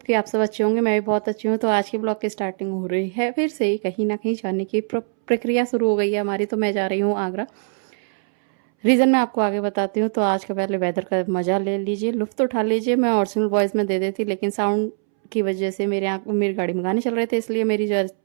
कि आप सब अच्छे होंगे। मैं भी बहुत अच्छी हूँ। तो आज की ब्लॉग की स्टार्टिंग हो रही है फिर से ही कहीं ना कहीं जाने की प्रक्रिया शुरू हो गई है हमारी। तो मैं जा रही हूँ आगरा। रीज़न मैं आपको आगे बताती हूँ। तो आज का पहले वेदर का मज़ा ले लीजिए, लुत्फ़ उठा लीजिए। मैं ओरिजिनल वॉइस में दे देती, लेकिन साउंड की वजह से मेरी गाड़ी में गाने चल रहे थे, इसलिए मेरी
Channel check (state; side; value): silent; left; 64 dB below the other